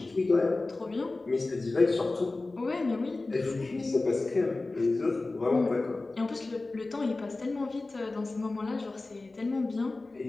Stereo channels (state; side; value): quieter; right; 3.3 dB